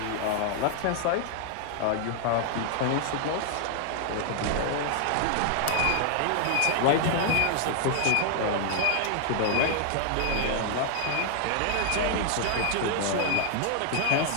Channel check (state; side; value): different; both; correlation 0.00